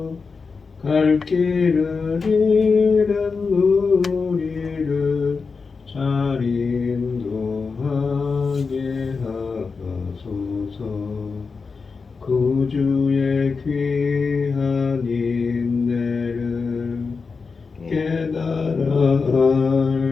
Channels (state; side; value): quieter; right; 4.8 dB